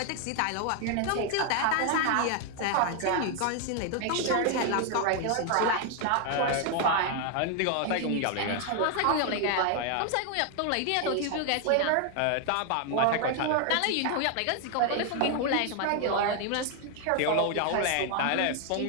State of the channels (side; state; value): both; different; correlation 0.00